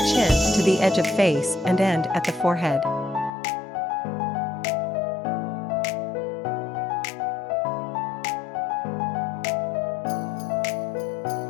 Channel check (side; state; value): right; drops out; at 3.3 s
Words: chin to the edge of face and end at the forehead.